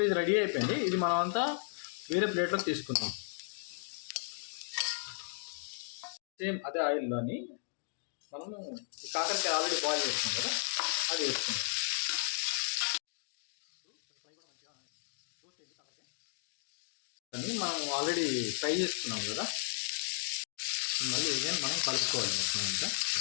ఇది రెడీ అయిపోయింది. ఇది మనం అంతా వేరే ప్లేట్లోకి తీసుకుందాం. సేమ్ అదే ఆయిల్లోని మనము కాకరకాయ ఆల్రెడీ బాయిల్ చేసుకున్నాం కదా, అది వేసుకుందాం. కానీ మనం ఆల్రెడీ ఫ్రై చేసుకున్నాం కదా, మళ్ళీ ఇదే మనం కలుపుకోవాలి మొత్తం అంతా.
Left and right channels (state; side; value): silent; right; digital silence